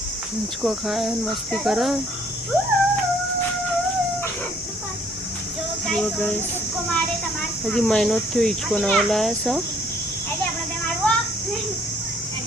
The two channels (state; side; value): normal; both; correlation 0.62